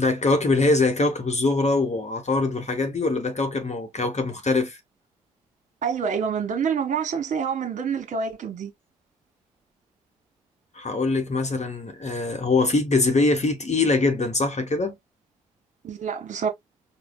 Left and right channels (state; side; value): normal; both; correlation 0.54